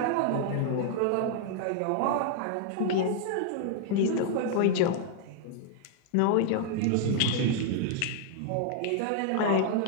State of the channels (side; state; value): both; different; correlation -0.01